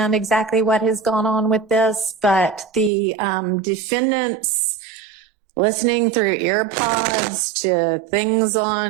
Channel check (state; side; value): drops out; left; at 2.9 s